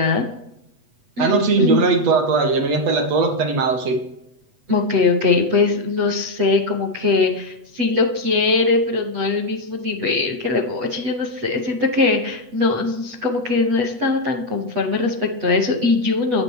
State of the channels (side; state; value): left; late; 8.1 ms